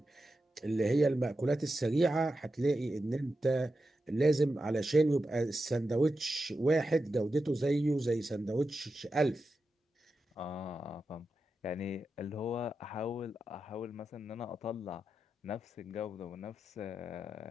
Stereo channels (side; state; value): both; normal; correlation 0.90